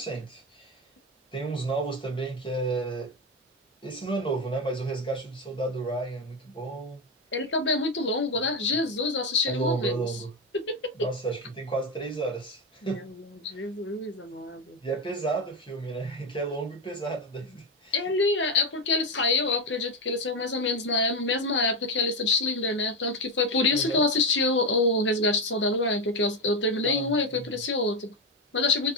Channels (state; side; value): normal; both; correlation 0.11